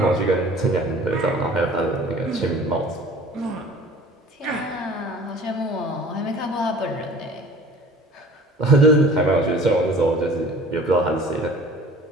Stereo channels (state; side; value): normal; both; correlation 0.46